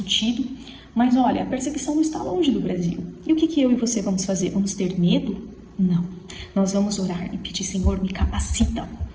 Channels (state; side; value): identical; both; correlation 1.00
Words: mas olha, a perseguição não está longe do Brasil. E o que eu e você vamos fazer? Vamos ter medo? Não. Nós vamos orar e pedir, Senhor, me capacita